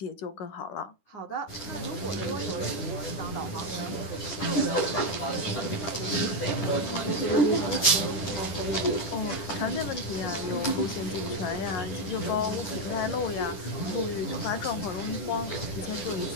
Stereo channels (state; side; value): late; right; 10 ms